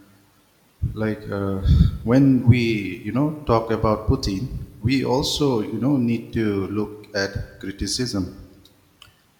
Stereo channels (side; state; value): both; identical; correlation 1.00